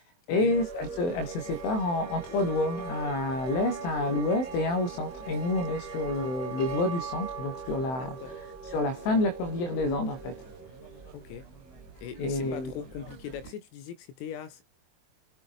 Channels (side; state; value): right; late; 23 ms